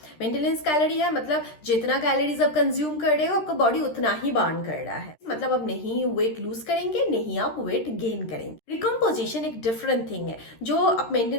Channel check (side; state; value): right; late; 13 ms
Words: मेंटेनेंस कैलोरी है मतलब जितना कैलोरीज आप कंज्यूम कर रहे हो आपका बॉडी उतना ही बर्न कर रहा है। मतलब आप नहीं वेट लूज करेंगे, नहीं आप वेट गेन करेंगे। रिकम्पोजिशन एक डिफरेंट थिंग है जो आप